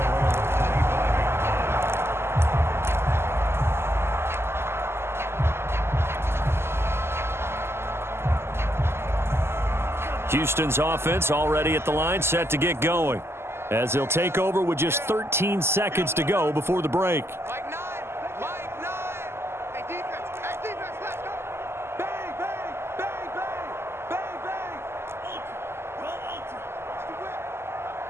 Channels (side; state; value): left; late; 0.12 ms